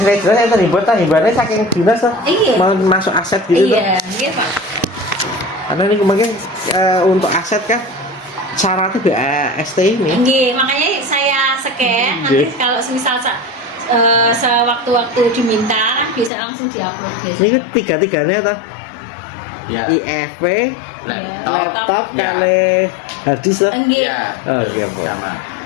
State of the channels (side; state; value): right; drops out; at 16.3 s